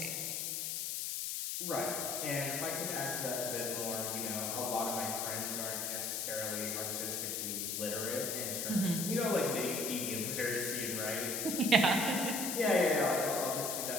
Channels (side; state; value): left; noise; hiss, 1 dB below the sound